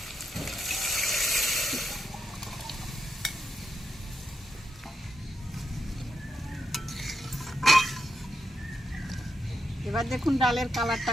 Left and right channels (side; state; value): both; normal; correlation 0.84